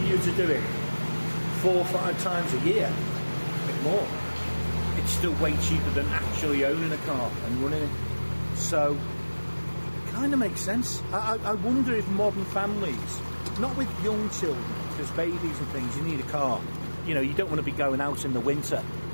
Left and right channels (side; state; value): both; inverted; correlation -1.00